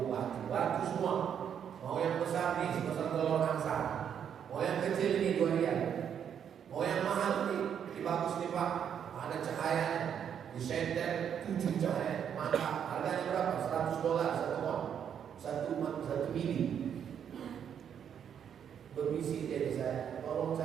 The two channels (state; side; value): quieter; left; 8.4 dB